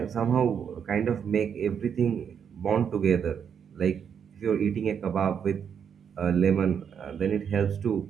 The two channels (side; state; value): left; quieter; 7.6 dB